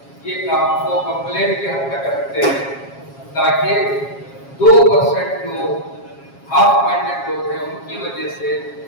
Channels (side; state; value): right; late; 7.3 ms